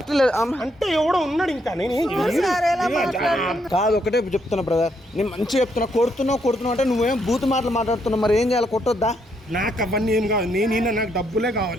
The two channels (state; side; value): normal; both; correlation 0.75